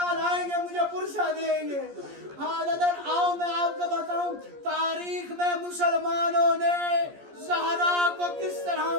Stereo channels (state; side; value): late; left; 14 ms